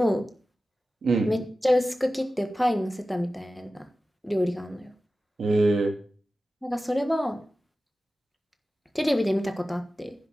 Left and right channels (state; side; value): normal; both; correlation 0.95